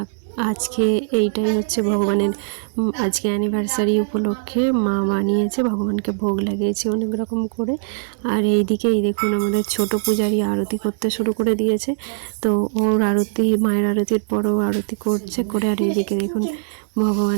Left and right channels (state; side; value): silent; left; 65 dB below the other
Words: আজকে এইটাই হচ্ছে ভগবানের আজকে অ্যানিভার্সারি উপলক্ষে মা বানিয়েছে, ভগবানকে ভোগ লাগিয়েছে অনেক রকম করে। আর এইদিকে এই দেখুন আমাদের ছোট পূজারি আরতি করতে শুরু করে দিয়েছে। তো ওর আরতি, মায়ের আরতির পরও আরতি করছে করে, আর এইদিকে দেখুন